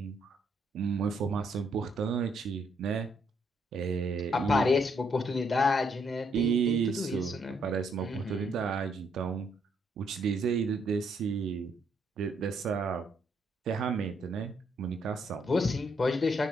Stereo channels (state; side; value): normal; both; correlation 0.73